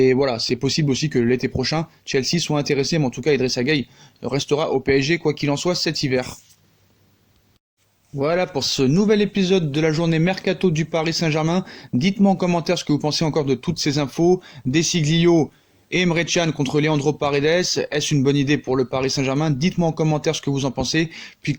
voilà, c'est possible aussi que l'été prochain, Chelsea soit intéressé. Mais en tout cas, Idrissa Gueye restera au PSG, quoi qu'il en soit, cet hiver. Voilà pour ce nouvel épisode de la journée Mercato du Paris Saint-Germain. Dites-moi en commentaire ce que vous pensez encore de toutes ces infos. Desiglio et Emre Can contre Leandro Paredes. Est-ce une bonne idée pour le Paris Saint-Germain? Dites-moi en commentaire ce que vous en pensez. Puis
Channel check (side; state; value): both; identical; correlation 1.00